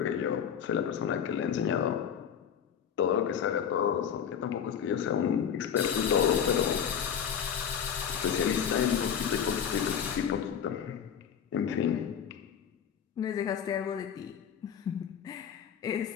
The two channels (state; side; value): quieter; right; 8.2 dB